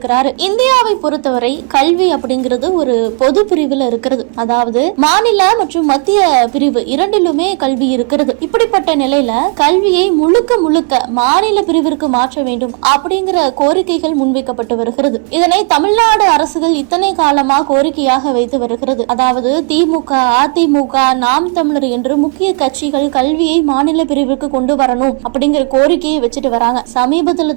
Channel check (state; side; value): quieter; left; 39.3 dB